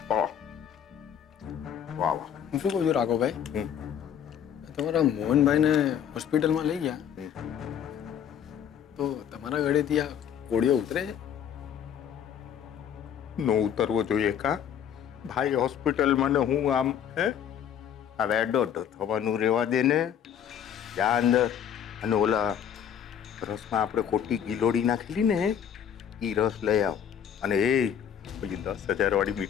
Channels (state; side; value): quieter; right; 8.9 dB